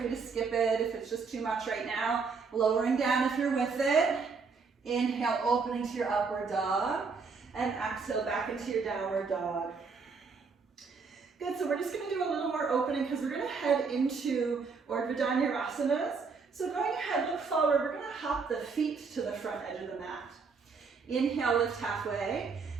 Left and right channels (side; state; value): left; quieter; 5.0 dB